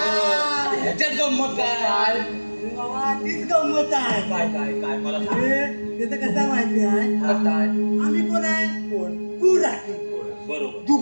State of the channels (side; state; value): both; inverted; correlation -1.00